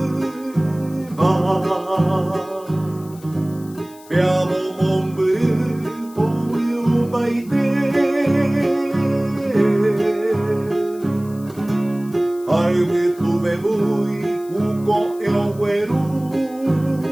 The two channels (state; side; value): noise; left; hiss, 24 dB below the sound